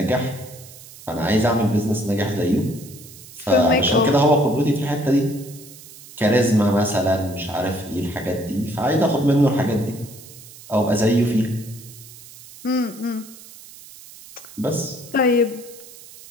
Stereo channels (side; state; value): right; noise; hiss, 19 dB below the sound